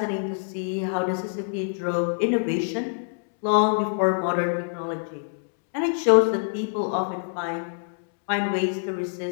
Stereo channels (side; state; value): right; silent; digital silence